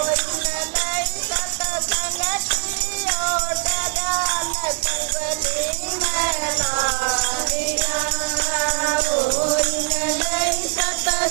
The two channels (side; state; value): left; silent; digital silence